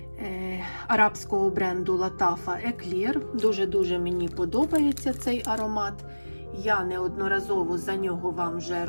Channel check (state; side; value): inverted; both; correlation -1.00